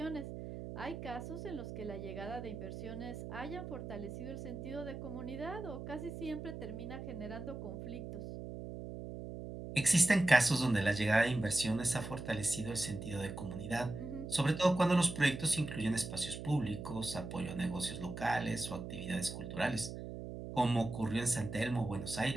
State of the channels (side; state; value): right; noise; hum, 8 dB below the sound